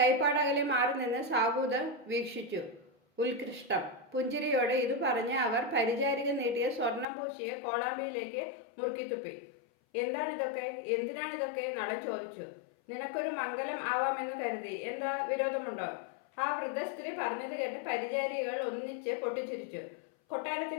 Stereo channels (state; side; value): drops out; right; at 7.1 s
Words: മാറി നിന്ന് സാബൂത് വീക്ഷിച്ചു. ഉത്കൃഷ്ടം. പുഞ്ചിരിയോടെ ഇത് പറഞ്ഞ് അവർ പരിചാരിക നീട്ടിയ സ്വർണം പൂശിയ കോളാമ്പിയിലേക്ക് മുറുക്കിത്തുപ്പി. എന്താണിതൊക്കെ, എന്തിനാണിതൊക്കെ? നളൻ ചോദിച്ചു. നിനക്കൊരു മംഗലം ആവാമെന്ന് കരുതി. എന്താ വിരോധമുണ്ടോ? ആ വൃദ്ധ സ്ത്രീ പറഞ്ഞത് കേട്ട് പരിചാരികൾ ഒന്നിച്ച് പൊട്ടിച്ചിരിച്ചു.